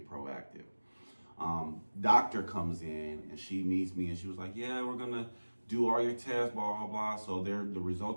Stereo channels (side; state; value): both; inverted; correlation -1.00